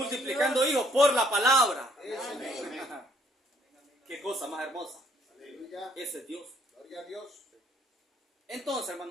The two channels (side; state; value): both; normal; correlation 0.65